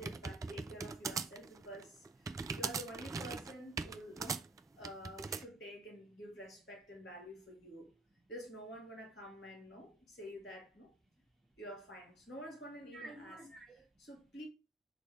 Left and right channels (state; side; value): quieter; left; 3.0 dB